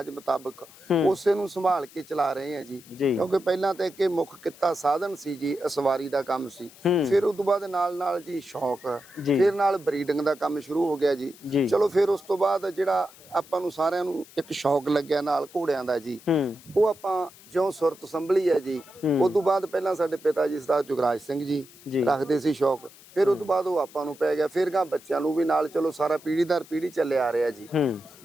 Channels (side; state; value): left; noise; hiss, 22 dB below the sound